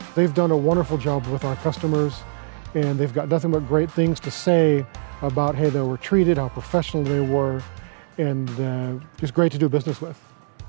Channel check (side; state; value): left; silent; digital silence